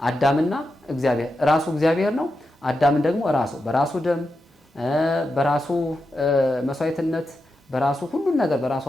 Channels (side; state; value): both; normal; correlation 0.88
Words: አዳምና እግዚአብሔር ራሱ እግዚአብሔር ነው። አዳምን ደግሞ ራሱ በራሱ ደም በራሱ መስዋዕትነት በራሱ ሁሉን ነገር በራሱ